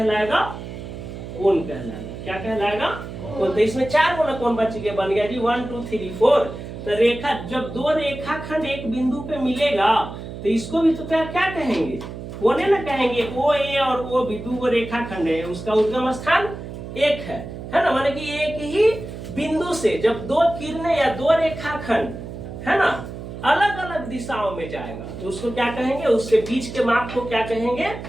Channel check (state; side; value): noise; right; hum, 10 dB below the sound